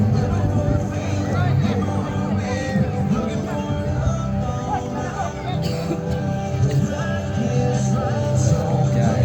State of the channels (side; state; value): both; identical; correlation 1.00